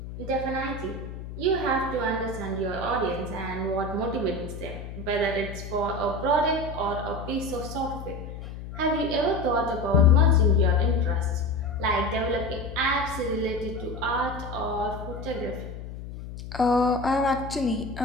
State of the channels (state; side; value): noise; left; hum, 10 dB below the sound